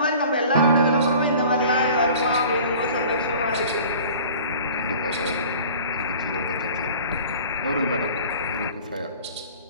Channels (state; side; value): inverted; both; correlation -0.44